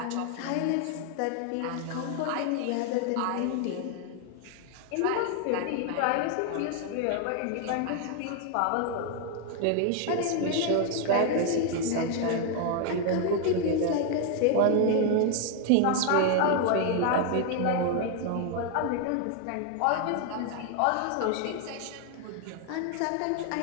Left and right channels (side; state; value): both; different; correlation 0.00